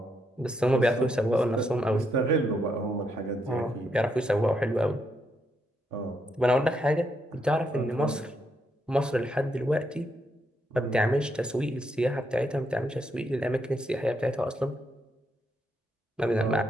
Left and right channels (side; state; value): both; normal; correlation 0.78